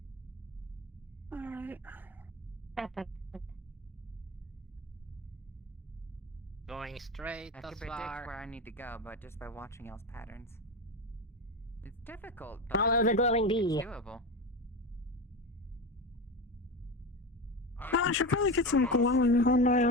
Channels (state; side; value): normal; both; correlation 0.22